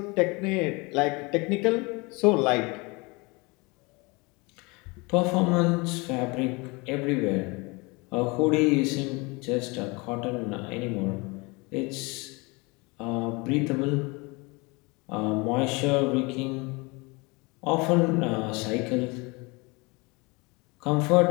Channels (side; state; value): right; quieter; 26.9 dB